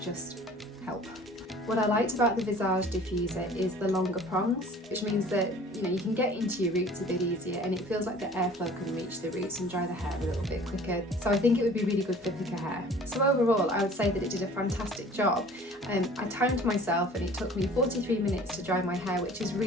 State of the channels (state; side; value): normal; both; correlation 0.48